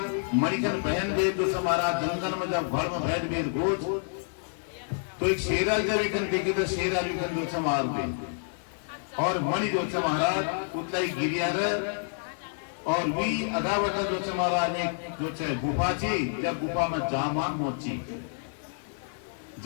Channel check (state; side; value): silent; right; digital silence